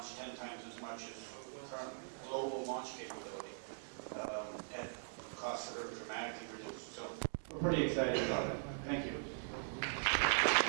10 times as much as current global launch capability at costs that are dramatically reduced. So we're pretty excited about it. Thank you.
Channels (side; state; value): left; silent; digital silence